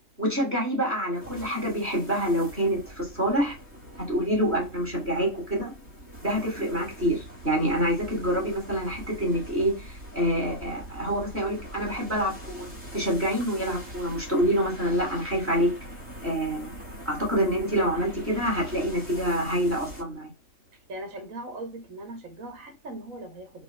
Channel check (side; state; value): left; late; 3.2 ms